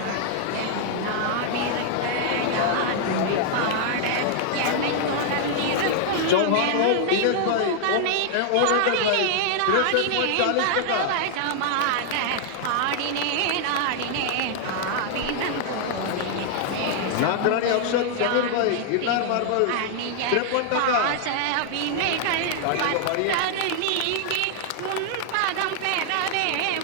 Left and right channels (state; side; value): different; both; correlation 0.00